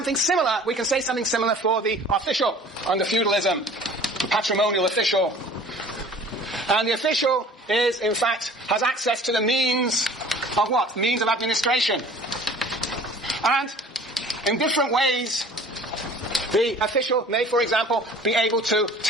similar. We can say something similar for the official under feudalism. The patrimonial official. And the official is, in fact, has access to the means of what? Means of administration. And in different ways, the official may, for example, be able to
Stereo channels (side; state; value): both; normal; correlation 0.47